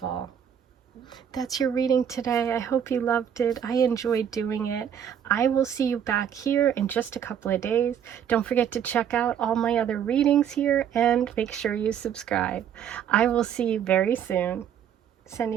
That's your reading today. I hope you loved it. I enjoyed doing it. I will see you back here in just a couple of days. Don't forget to check out all my other readings here and make sure you subscribe. I will see you very soon.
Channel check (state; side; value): quieter; left; 8.9 dB